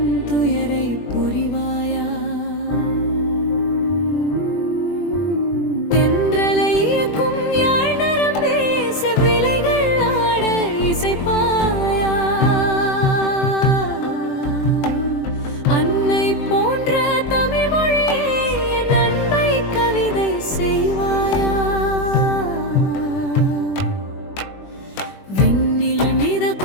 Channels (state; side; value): late; right; 21 ms